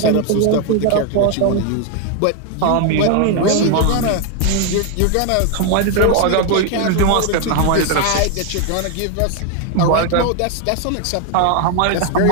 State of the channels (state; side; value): different; both; correlation 0.01